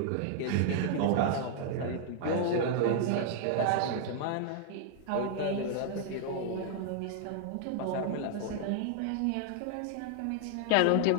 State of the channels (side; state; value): both; different; correlation 0.00